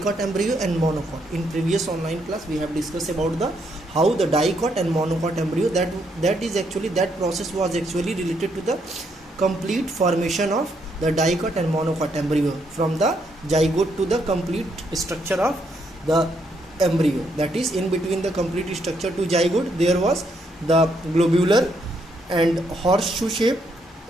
embryo and monocot. In previous online class we have discussed about the how the dicot and monocot embryo, that process was actually related to the complete formation of the dicot and monocot embryo from the zygote to the complete structure of the embryo. That is, in between the complete structure to zygote there was the globular and horseshoe shape,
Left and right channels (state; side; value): normal; both; correlation 0.75